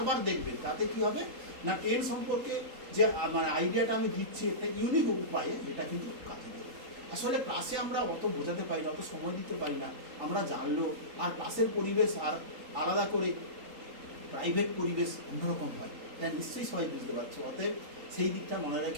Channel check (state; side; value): late; left; 3.8 ms